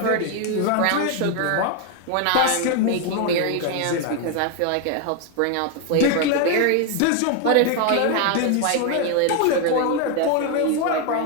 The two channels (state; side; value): different; both; correlation 0.01